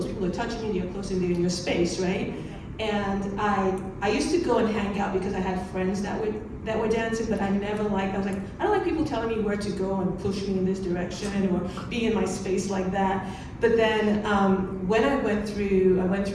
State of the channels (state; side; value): identical; both; correlation 1.00